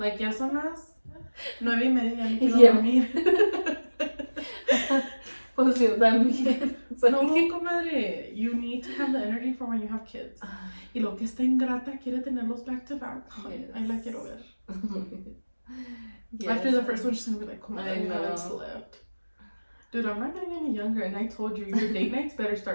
ya son las 9:30, ya me quiero dormir. Pues yo también. No, comadre, you need to have the energy for when you have kids. Y lo que está ingrata quiere tenerlos back to back. Yes. Ahí la quiero ver. Yes. After the first one, she's gonna be like, comadre, I haven't slept. Dude, I'm not getting any younger, and I told you, your date nights better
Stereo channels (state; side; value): inverted; both; correlation -1.00